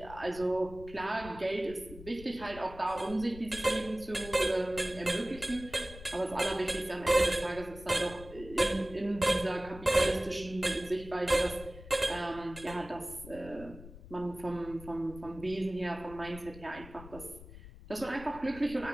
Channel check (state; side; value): noise; left; rumble, 16 dB below the sound